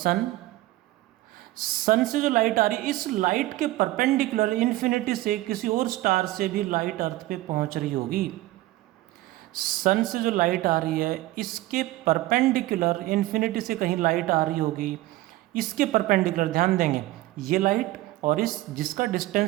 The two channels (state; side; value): quieter; left; 17.4 dB